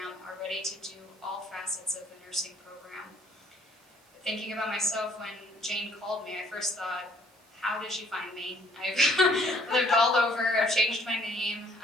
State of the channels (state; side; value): normal; both; correlation 0.61